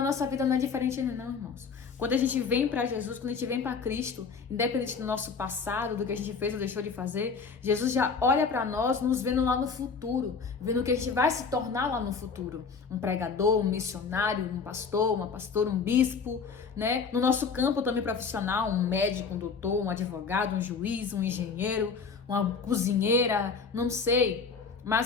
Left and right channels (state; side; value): quieter; right; 5.3 dB